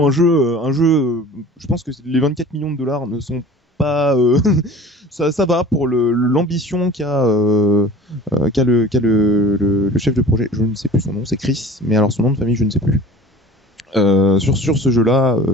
un jeu. Je pense que les 24 millions de dollars ne sont pas. Ça va pour l'ambition qu'a le chef de projet. Je ne sais plus son nom, c'est Chris, mais alors son nom de famille, je ne sais plus. Sur ce jeu-là,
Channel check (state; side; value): normal; both; correlation 0.43